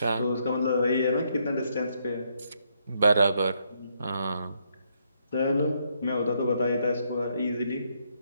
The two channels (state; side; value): inverted; both; correlation -0.74